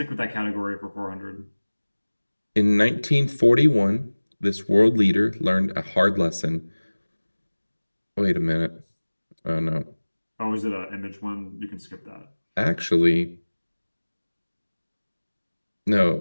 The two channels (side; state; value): both; inverted; correlation -1.00